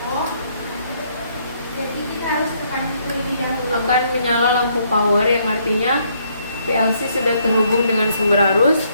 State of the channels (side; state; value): both; inverted; correlation -0.70